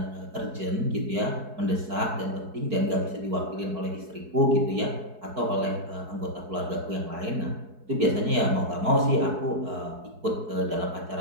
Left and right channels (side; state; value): left; late; 4.7 ms